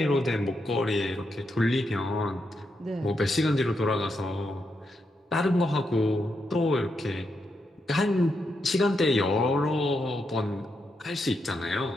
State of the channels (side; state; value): both; normal; correlation 0.83